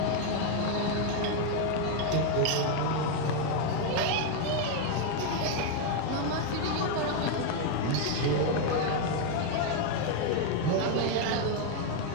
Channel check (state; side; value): different; both; correlation 0.01